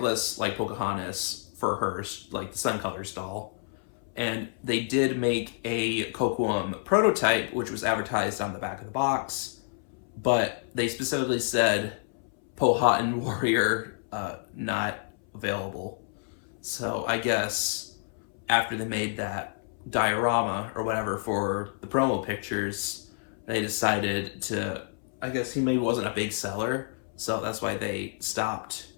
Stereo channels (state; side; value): silent; right; 59 dB below the other